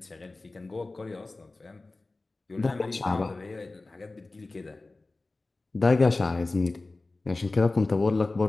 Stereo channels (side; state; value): right; quieter; 3.3 dB